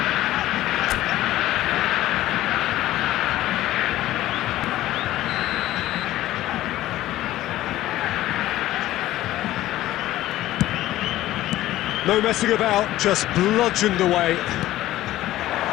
No messing about, just bludgeoned away.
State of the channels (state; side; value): quieter; right; 15.0 dB